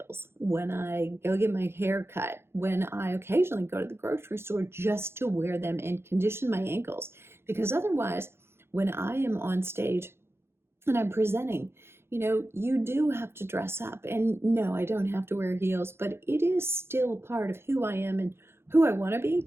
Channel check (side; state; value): left; late; 0.12 ms